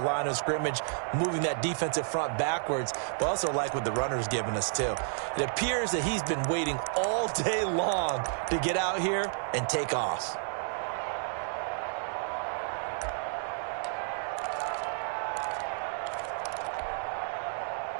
of scrimmage, moving that defensive front backwards, but also like what the runner's giving us, too. It appears that he's been waiting all day long to get out here and take off.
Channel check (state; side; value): silent; left; 57 dB below the other